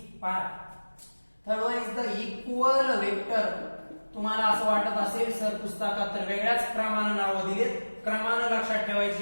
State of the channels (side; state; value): both; inverted; correlation -1.00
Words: is the equal vector. तुम्हाला असं वाटत असेल सर पुस्तकात तर वेगळ्याच क्रमानं नावं दिलेत, क्रमानं लक्षात